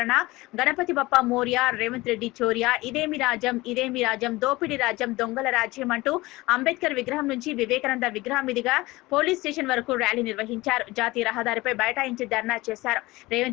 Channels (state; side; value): quieter; right; 20.5 dB